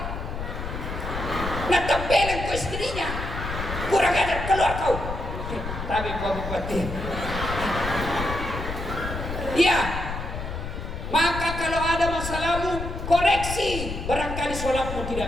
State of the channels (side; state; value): left; noise; rumble, 6 dB below the sound